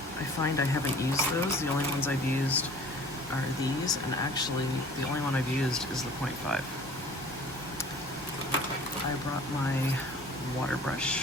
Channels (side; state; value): both; normal; correlation 0.48